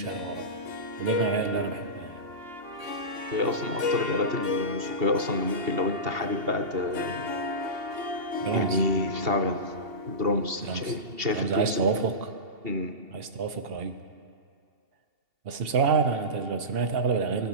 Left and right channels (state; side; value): late; left; 2.7 ms